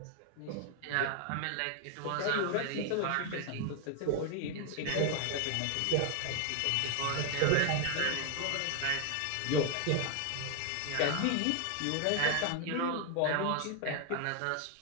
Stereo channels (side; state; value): both; different; correlation 0.00